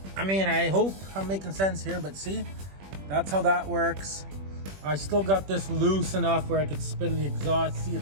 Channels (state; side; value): late; left; 21 ms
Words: I mean, I hope I'm making sense here, but see, that's how that works. I still got this loose enough where I could spin the exhaust. See,